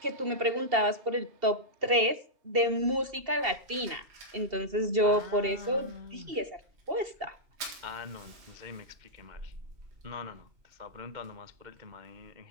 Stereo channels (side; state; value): left; late; 2.7 ms